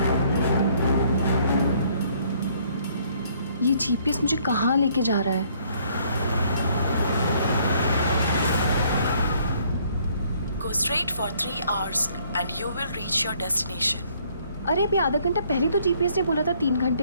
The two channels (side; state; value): both; inverted; correlation -0.64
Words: ये जीपीएस मुझे कहाँ लेके जा रहा है? Go straight for 3 hours and you will reach your destination. अरे अभी आधा घंटा पहले तो जीपीएस ने बोला था 3